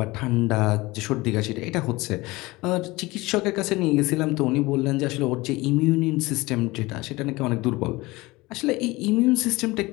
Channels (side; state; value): right; quieter; 21.3 dB